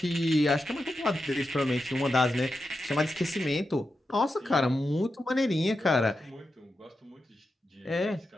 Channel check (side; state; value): both; normal; correlation 0.89